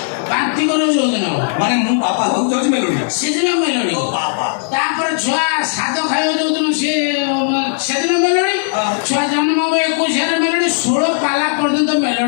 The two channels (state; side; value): silent; right; 69 dB below the other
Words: ବାନ୍ତି କରିବ ଯୋଉଦିନ ମାନେ ମୁଁ ବାପା ହଉଛି ମେଲୋଡି ସେଦିନ ମେଲୋଡି ତାପରେ ଛୁଆ ସାଦ ଖାଇବ ଯୋଉଦିନ ସେଦିନ ମେଲୋଡି ଛୁଆ ଜନ୍ମ ହବ 21ରେ ମେଲୋଡି 16 ପାଲା ପର୍ଯ୍ୟନ୍ତ